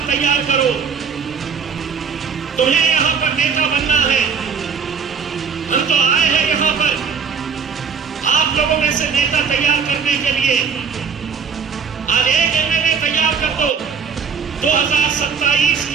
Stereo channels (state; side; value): quieter; left; 6.3 dB